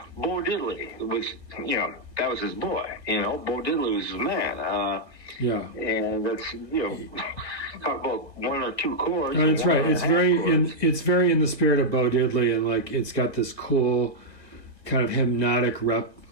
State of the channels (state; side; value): late; right; 1.7 ms